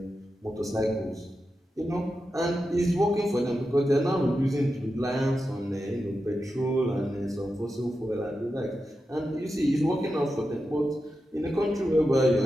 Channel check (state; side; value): normal; both; correlation 0.90